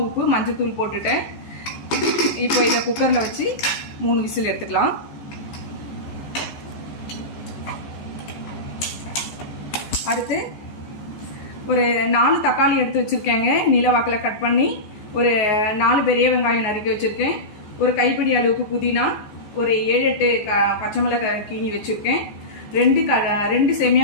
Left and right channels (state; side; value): late; right; 14 ms